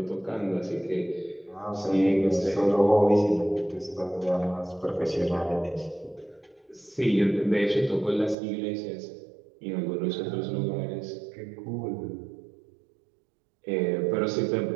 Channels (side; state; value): left; drops out; at 8.3 s